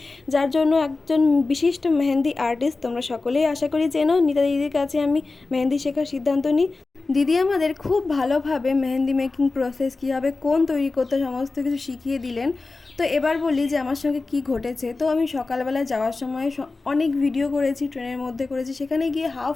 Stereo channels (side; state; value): right; quieter; 3.6 dB